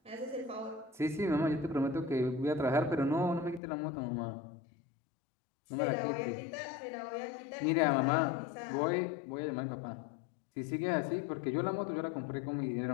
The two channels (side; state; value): right; drops out; at 3.6 s